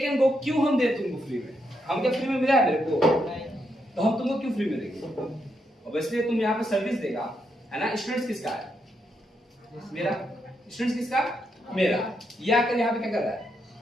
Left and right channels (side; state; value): both; normal; correlation 0.80